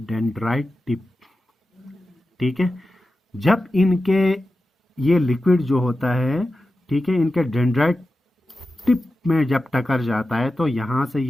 टिप, ठीक है, जब इनके ये लिक्विड जो होता है, ठीक है, इनके डेंड्राइट टिप में जब टकर जाता है तो यहां से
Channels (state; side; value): normal; both; correlation 0.92